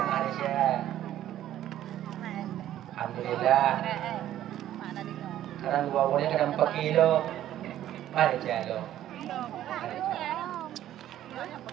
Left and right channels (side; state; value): left; quieter; 12.4 dB